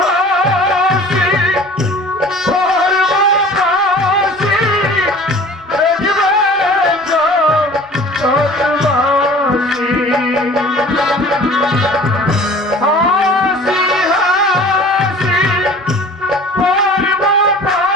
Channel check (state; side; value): normal; both; correlation 0.45